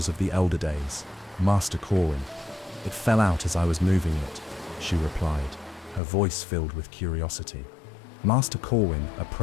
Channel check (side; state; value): right; drops out; at 6.0 s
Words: of the Elder Days, Master Corwin. It fell out as I was moving it," she replied, her voice filled with curiosity. Master Corwin